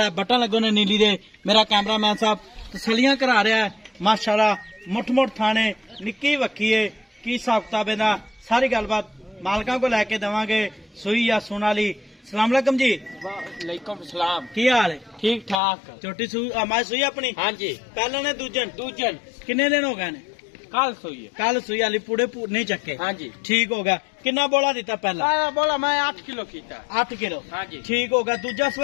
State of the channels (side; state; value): right; drops out; at 15.6 s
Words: बटन लगे ने नीली दे। मेरा कैमरामैन साहब तसलियां करा रहा है माशाल्लाह। मुठ मुठ थाने, निक्की वक्की है। की हिसाब किताब इहदा सारी गलबात मालकां को लैके देवांगे। सुई या सुन वाली। सलाम अलैकुम जी। वालेकुम सलाम। की हाल है? ठीक ठाक। छोटी मैं सुई अपनी। हाँ जी। पहले ने दूजन दूजन किन्ने दिन हो गए ने? कल सोई है। कल सुई वाली पूरे नहीं चक्के। हाँ जी। ठीक हो गया। कितना बोला दिता पहला? बोला मैं 8 किलो कीता। 8 किलो। हाँ जी। ठीक हो गया। दूजा